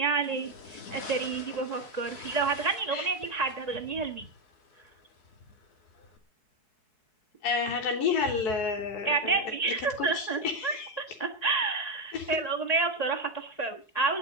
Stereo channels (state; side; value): late; right; 4.7 ms